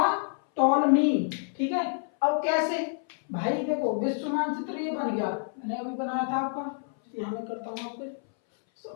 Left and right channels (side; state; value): right; silent; 59 dB below the other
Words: टॉलमी। ठीक है, अब कैसे? भाई देखो विश्व मानचित्र ये बन गया, मैंने अभी बनाया था आपका, यहां मैं करता हूं आपको